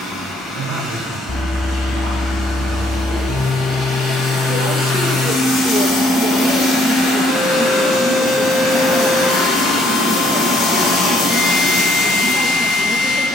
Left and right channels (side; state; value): both; normal; correlation 0.65